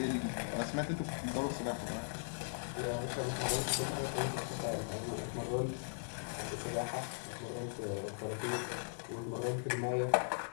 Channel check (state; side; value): silent; right; digital silence